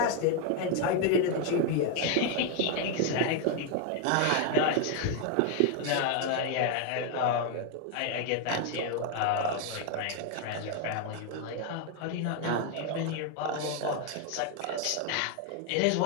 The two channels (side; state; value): both; different; correlation 0.01